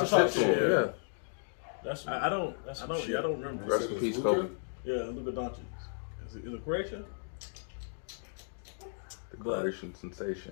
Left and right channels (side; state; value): right; silent; digital silence